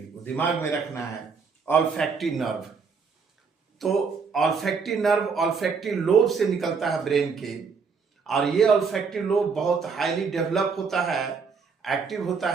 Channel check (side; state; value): left; quieter; 5.4 dB